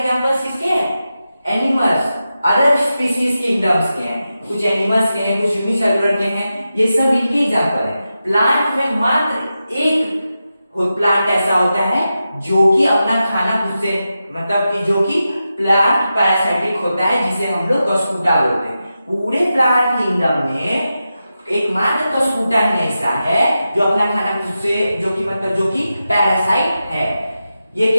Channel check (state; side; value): inverted; both; correlation -0.91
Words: किसके हैं, एनिमल्स, अदर स्पीसीज किंगडम्स के हैं, कुछ एनिमल्स के हैं, कुछ यूनिसेलुलर के हैं, ये सब इनके एग्जाम्पल है। प्लांट में मात्र एक प्लांट ऐसा होता है जो कि अपना खाना खुद से, मतलब कि जो कि प्लांट पैरासाइटिक होता है, जिसे हम लोग कस्कूटा बोलते हैं। पूरे प्लांट किंगडम में एकमात्र कस्कूटा ही ऐसा है जो अपना खाना खुद से, जो कि मतलब जो कि पैरासाइट है। ये